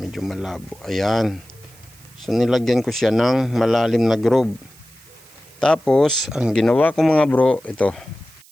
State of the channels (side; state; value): right; noise; hiss, 26 dB below the sound